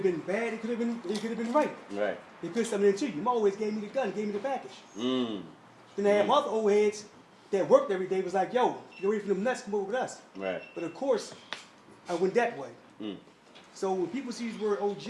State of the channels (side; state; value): both; identical; correlation 1.00